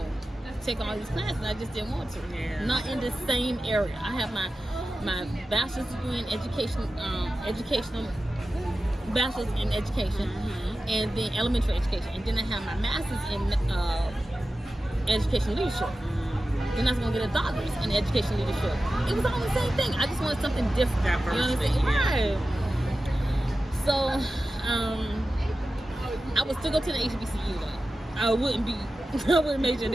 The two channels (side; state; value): both; normal; correlation 0.93